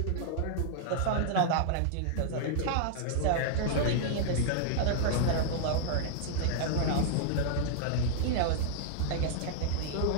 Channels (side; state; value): both; different; correlation -0.01